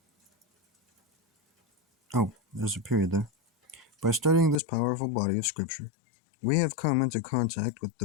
Oh, there's a period there. By studying this powerful body of Scripture, we have come into contact with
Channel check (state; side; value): drops out; right; at 4.6 s